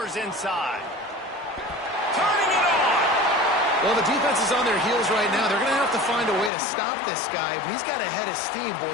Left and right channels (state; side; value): drops out; right; at 6.5 s